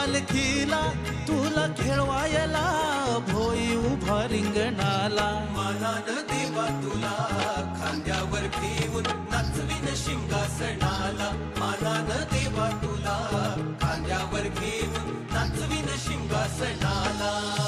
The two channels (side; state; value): both; identical; correlation 1.00